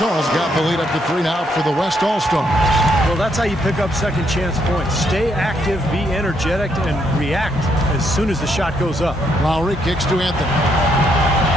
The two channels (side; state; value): both; normal; correlation 0.74